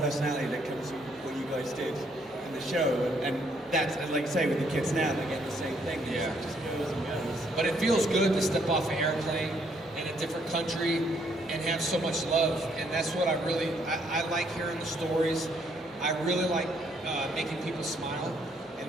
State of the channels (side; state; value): both; normal; correlation 0.69